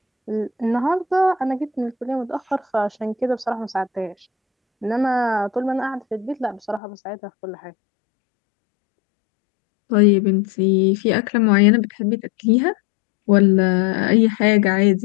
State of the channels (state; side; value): drops out; right; at 6.8 s